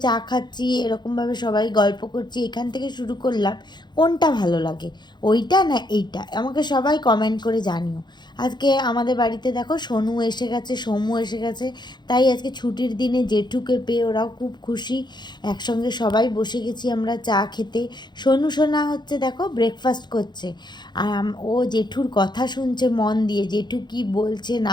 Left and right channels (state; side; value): late; right; 0.21 ms